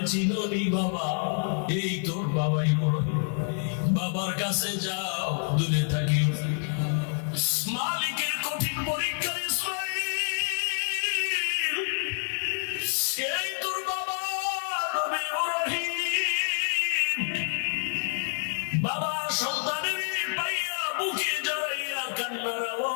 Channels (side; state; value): right; silent; digital silence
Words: চিনি বাবা, এই তোর বাবা ইব্রাহিম, বাবার কাছে যাও, দূরে থাকিও। মালিকের কঠিন পরীক্ষা ইসমাইল, এই তোর বাবা নবী ইব্রাহিম। বাবা সন্তানের পাইয়া বুকে জড়াইয়া কান্নার